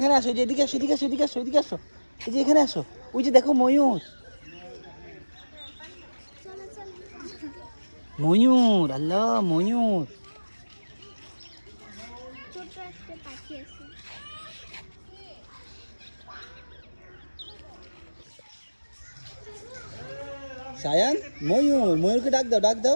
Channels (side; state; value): both; inverted; correlation -1.00